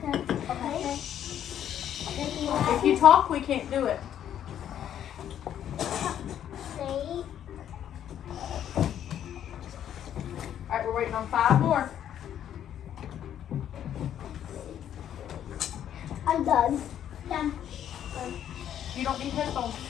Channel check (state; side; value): quieter; right; 10.2 dB